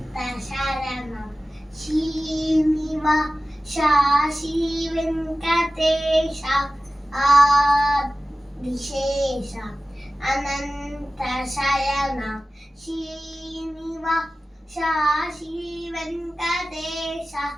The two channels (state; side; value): normal; both; correlation 0.96